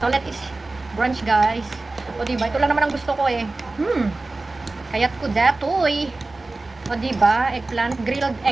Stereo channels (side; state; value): left; quieter; 3.2 dB